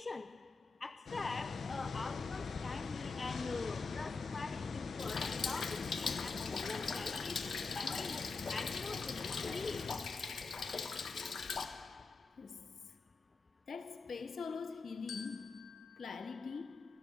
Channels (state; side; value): quieter; right; 4.3 dB